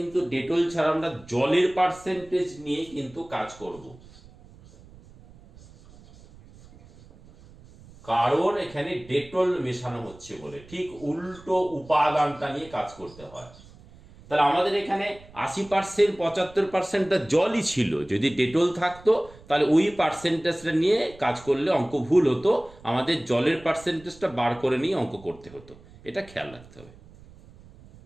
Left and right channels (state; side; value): noise; right; rumble, 22 dB below the sound